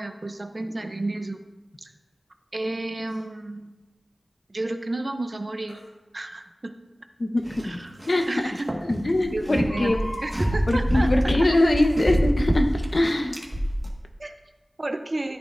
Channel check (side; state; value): both; normal; correlation 0.97